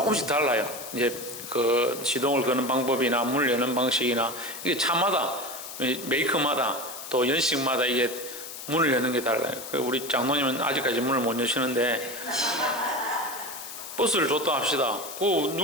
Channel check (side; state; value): left; noise; hiss, 11 dB below the sound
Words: 달라요. 이제 그 시동을 거는 방법이나 문을 여는 방식이나 이게 차마다 메이커마다 또 연식마다 이게 문을 여는 게 달라요. 우리 장로님은 아직까지 문을 못 여시는데 버스를 줬다 합시다. 그